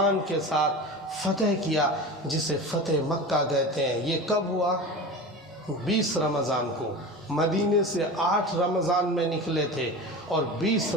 کے ساتھ فتح کیا، جسے فتح مکہ کہتے ہیں۔ یہ کب ہوا؟ 20 رمضان کو۔ مدینے سے 8 رمضان میں نکلے تھے اور 20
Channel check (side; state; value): both; normal; correlation 0.31